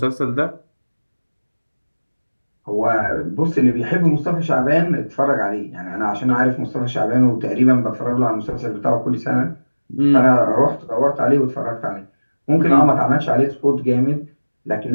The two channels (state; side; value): inverted; both; correlation -1.00